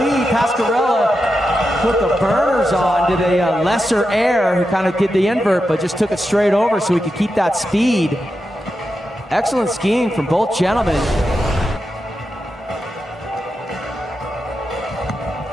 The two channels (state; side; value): normal; both; correlation 0.89